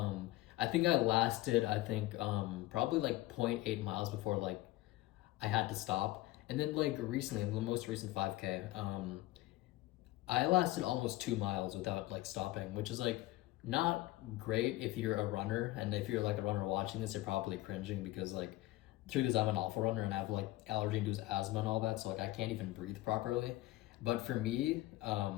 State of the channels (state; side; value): quieter; right; 17.5 dB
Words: I think I lasted, probably like 0.8 miles before like I had to stop. And then like recently, the most recent 5K, I lasted almost 2 miles without like stopping, which is like not great if you're a runner. And if you're like a runner watching this, you're probably cringing because like the truth is I'm an awful runner and I have like allergy-induced asthma and all that, so like I can't even breathe properly. But for me,